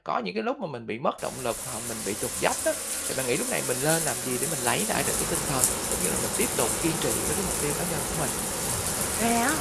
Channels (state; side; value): identical; both; correlation 1.00